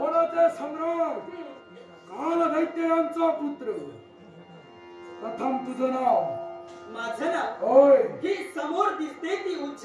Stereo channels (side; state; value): both; identical; correlation 1.00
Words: सम्राट काल दैत्य यांचा पुत्र. प्रथम तुझं नाव. माझं नाव होय. ही समोर दिसते ती